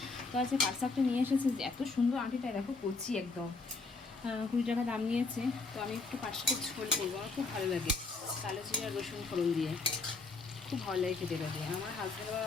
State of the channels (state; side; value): quieter; right; 3.9 dB